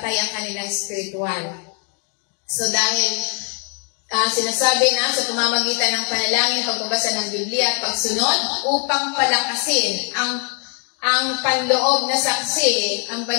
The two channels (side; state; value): right; quieter; 39.2 dB